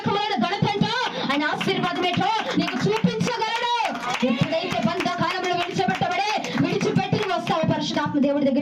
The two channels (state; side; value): identical; both; correlation 1.00